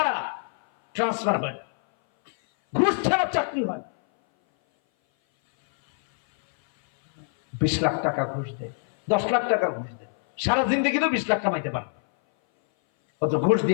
ট্রান্সফার হয়, ঘুষ ছাড়া চাকরি হয়। 20 লাখ টাকা ঘুষ দেয়, 10 লাখ টাকা ঘুষ দেয়, সারা জিন্দগি তো 20 লাখ কামাইতে পারে, কত ঘুষ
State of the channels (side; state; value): right; silent; 58 dB below the other